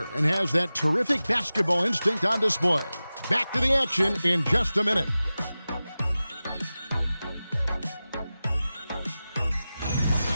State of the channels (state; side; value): inverted; both; correlation -0.96